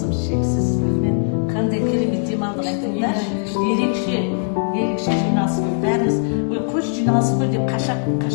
Ерекше жиналыс қой, бәріміз көш жиналыс қой деп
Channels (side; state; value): right; silent; digital silence